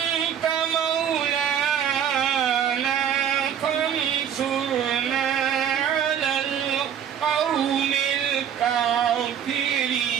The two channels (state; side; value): quieter; left; 8.9 dB